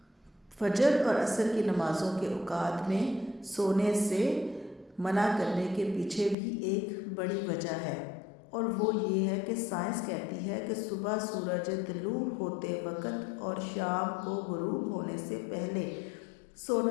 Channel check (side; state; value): right; drops out; at 6.4 s